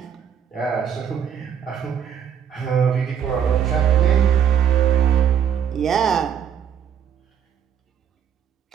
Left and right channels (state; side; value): quieter; left; 8.4 dB